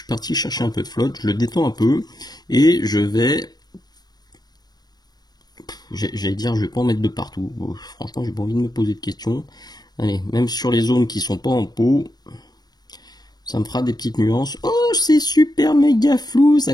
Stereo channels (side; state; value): right; late; 0.19 ms